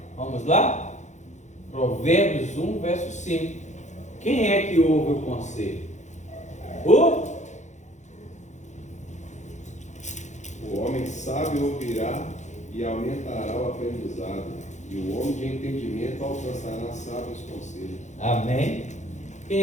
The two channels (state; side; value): late; right; 0.34 ms